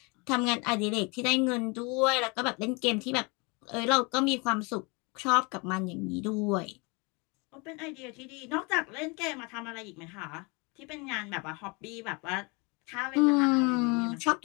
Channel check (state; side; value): quieter; right; 29.2 dB